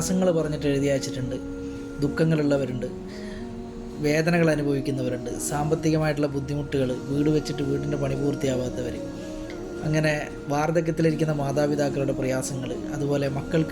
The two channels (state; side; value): identical; both; correlation 1.00